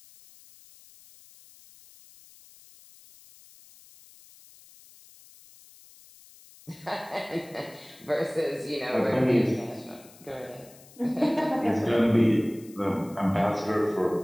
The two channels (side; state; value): left; noise; hiss, 24 dB below the sound